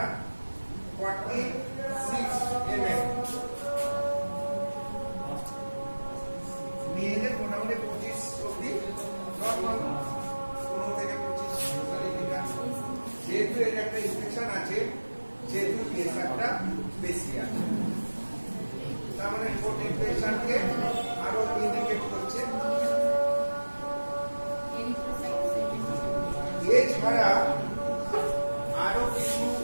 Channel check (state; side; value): inverted; both; correlation -1.00